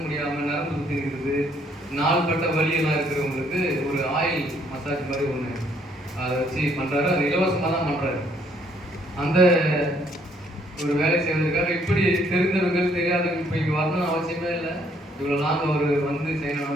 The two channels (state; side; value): normal; both; correlation 0.66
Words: முடியாமல் நரம்பு சுற்றி இருக்குது, நாள்பட்ட வலியெல்லாம் இருக்கிறவங்களுக்கு ஒரு ஆயில் மசாஜ் மாதிரி ஒன்று அதை வச்சு பண்ணுறாரு. அது இலவசமாக தான் பண்ணுறாரு. அந்த ஒரு வேலை செய்வதற்காக இப்படி தெரிந்தவர்கள் தெரியாதவர்கள் இப்போ இங்கே வரணும்னு அவசியமே இல்லை. இவ்வளோ நாங்கள் அவர் வந்து செய்யணும்னு